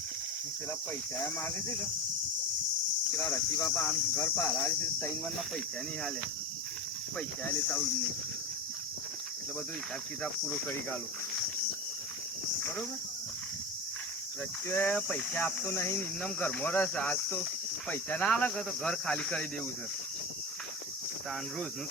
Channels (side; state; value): both; normal; correlation 0.23